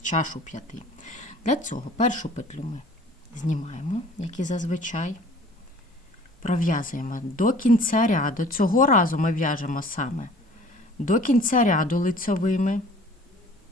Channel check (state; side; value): normal; both; correlation 0.49